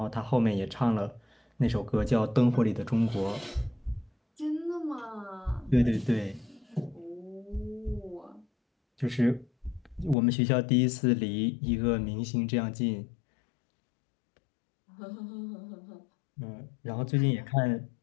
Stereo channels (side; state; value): right; drops out; at 10.2 s